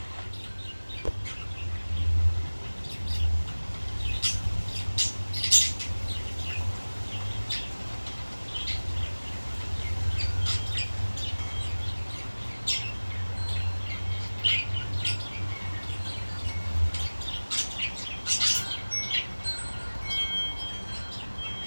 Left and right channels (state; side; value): inverted; both; correlation -1.00